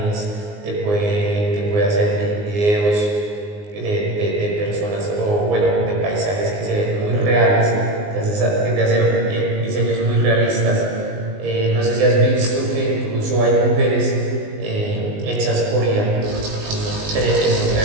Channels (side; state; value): left; late; 19 ms